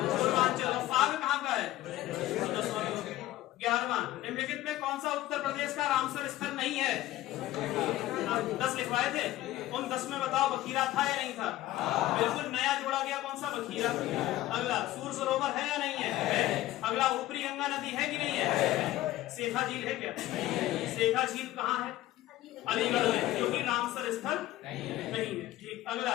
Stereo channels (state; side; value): quieter; right; 15.6 dB